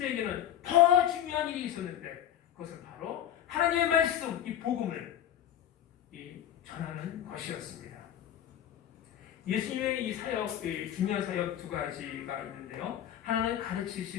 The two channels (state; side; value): quieter; right; 10.9 dB